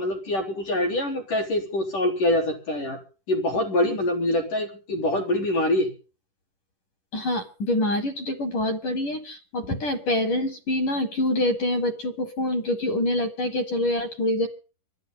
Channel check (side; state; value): right; late; 10 ms